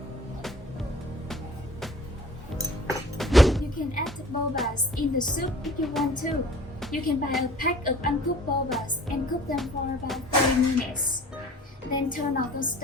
You can add the bobas in the soup if you want to. You can buy a pack of uncooked bobas and cook them for about 30 minutes. Then turn off the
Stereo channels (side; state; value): both; normal; correlation 0.47